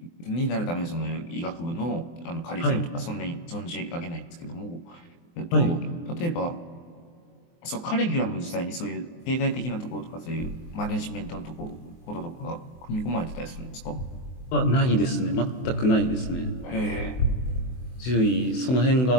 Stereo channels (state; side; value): late; right; 24 ms